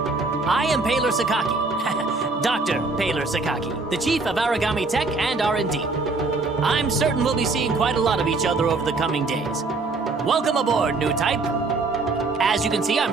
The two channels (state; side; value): quieter; left; 3.7 dB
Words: I am Paler Sakaki. Dr. Paler Sakaki, the chief of Origami Tech and R&D. I'm certain we'll be seeing quite a lot of each other over the coming days. Welcome aboard, new type. As you can see,